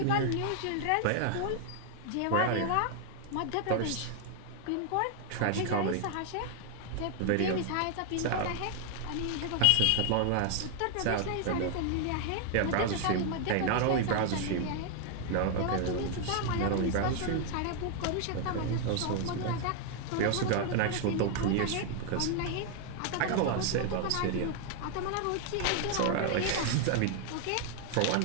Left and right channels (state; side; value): different; both; correlation 0.00